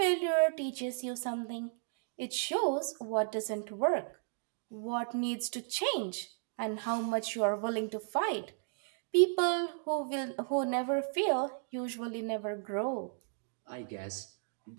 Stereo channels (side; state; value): left; silent; digital silence